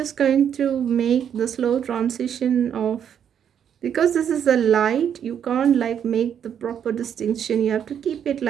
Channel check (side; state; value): left; quieter; 8.7 dB